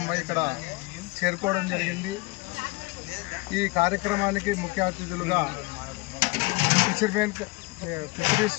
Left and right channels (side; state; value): right; quieter; 24.8 dB